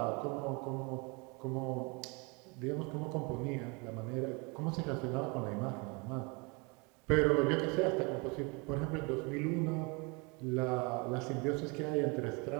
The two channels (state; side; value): quieter; left; 29.6 dB